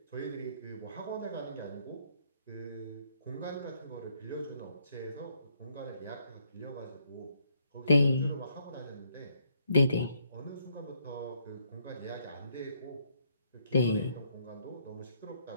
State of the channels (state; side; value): inverted; both; correlation -0.70